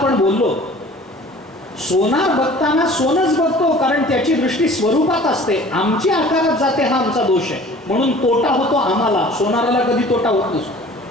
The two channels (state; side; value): normal; both; correlation 0.47